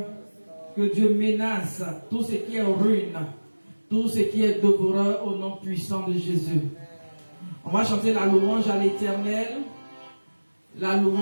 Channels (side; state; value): both; inverted; correlation -1.00